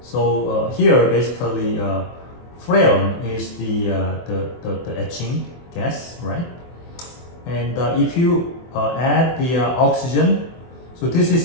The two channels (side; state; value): right; late; 24 ms